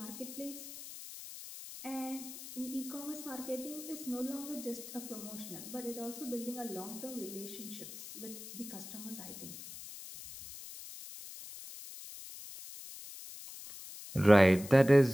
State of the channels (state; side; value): noise; left; hiss, 12 dB below the sound